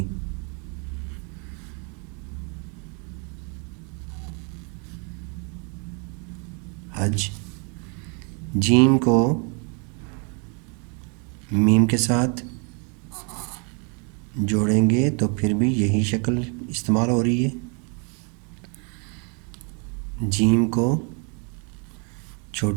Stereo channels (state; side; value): quieter; left; 36.2 dB